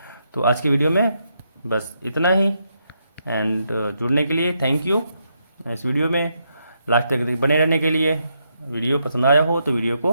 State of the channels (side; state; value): both; inverted; correlation -0.80